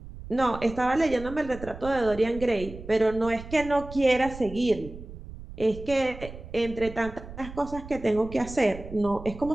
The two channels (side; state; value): right; noise; rumble, 13 dB below the sound